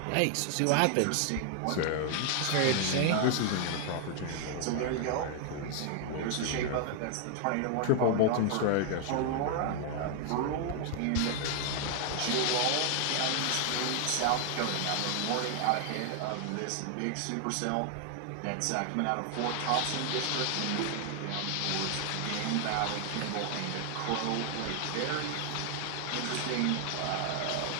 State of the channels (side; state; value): both; different; correlation 0.00